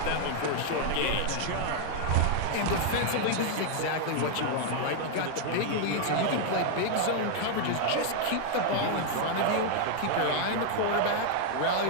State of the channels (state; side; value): different; both; correlation 0.00